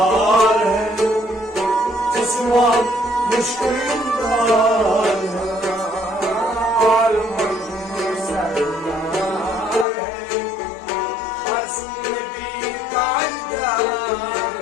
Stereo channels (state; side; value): drops out; right; at 9.9 s